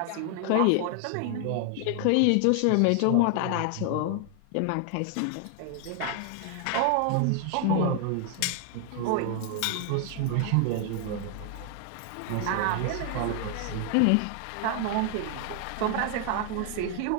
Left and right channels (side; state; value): both; different; correlation 0.00